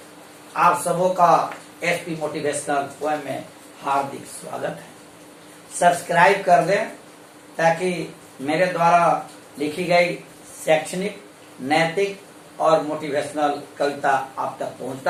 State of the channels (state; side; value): identical; both; correlation 1.00